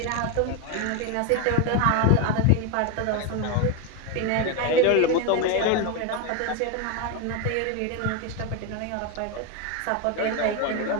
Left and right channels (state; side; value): different; both; correlation 0.02